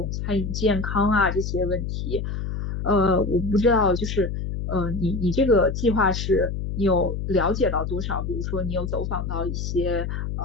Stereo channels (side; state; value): left; noise; hum, 4 dB below the sound